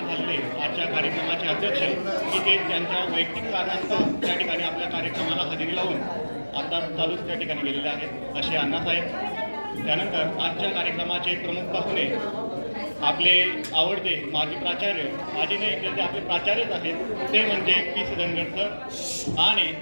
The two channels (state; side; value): inverted; both; correlation -1.00